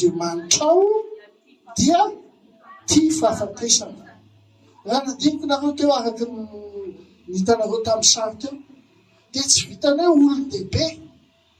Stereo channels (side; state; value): both; identical; correlation 1.00